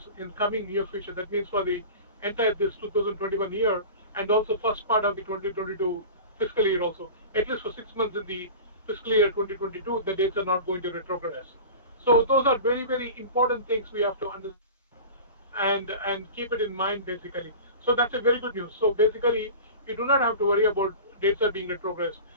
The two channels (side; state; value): both; inverted; correlation -0.35